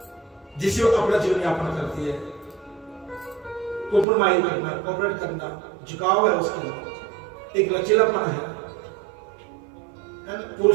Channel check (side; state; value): left; drops out; at 4.0 s